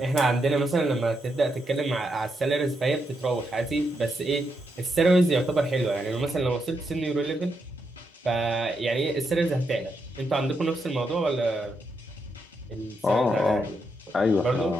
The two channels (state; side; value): normal; both; correlation 0.81